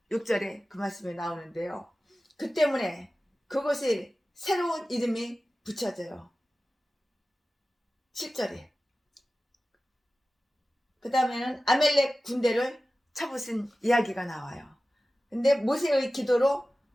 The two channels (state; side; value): normal; both; correlation 0.95